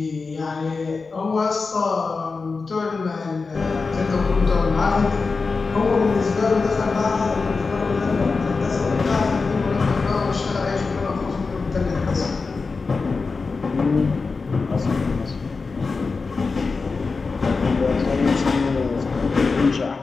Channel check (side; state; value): right; quieter; 4.3 dB